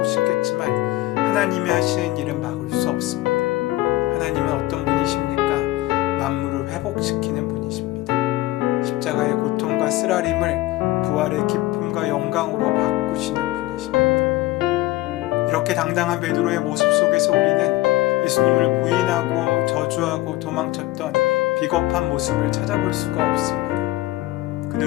싶겠지만 하나님이 하시는 일은 막을 수 없습니다. 하나님은 어떤 분이십니까? 만물을 회복시키는 분이십니다. 십자가의 고통과 쓰라림을 부활의 기쁨과 영광으로 바꾸시는 분이십니다. 이렇게 당당한 베드로의 모습 속에서 우리는 예수님을 부인하고 저주하고 도망쳤던 비겁한 모습을 찾아볼 수가 없습니다.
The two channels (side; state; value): right; quieter; 17.1 dB